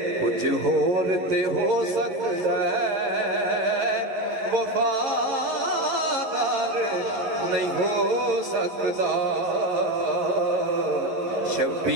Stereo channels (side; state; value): left; late; 11 ms